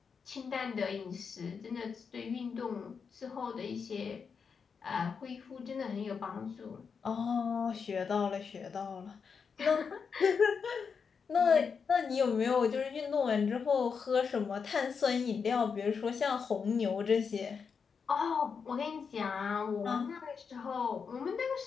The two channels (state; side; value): quieter; right; 5.9 dB